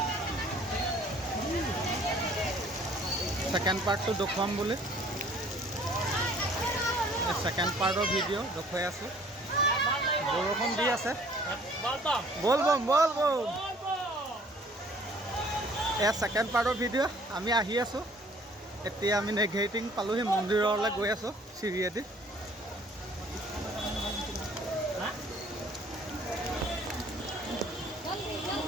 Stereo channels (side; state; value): both; normal; correlation 0.55